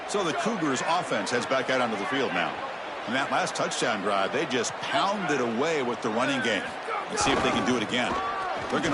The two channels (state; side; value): identical; both; correlation 1.00